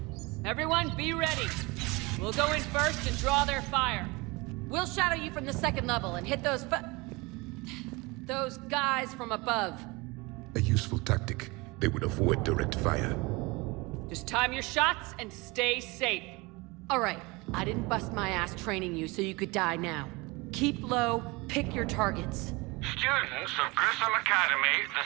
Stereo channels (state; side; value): quieter; left; 24.8 dB